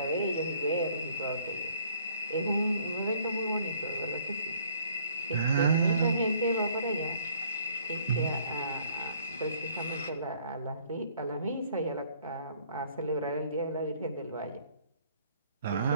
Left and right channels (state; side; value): inverted; both; correlation -0.60